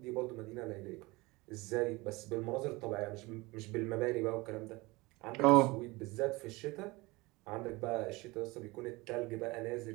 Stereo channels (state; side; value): quieter; left; 23.1 dB